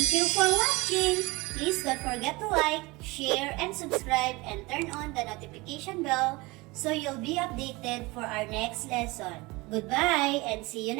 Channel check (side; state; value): left; quieter; 23.3 dB